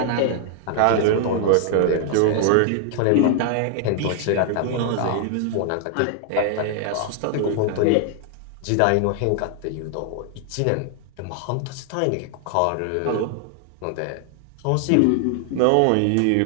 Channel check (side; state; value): both; different; correlation 0.00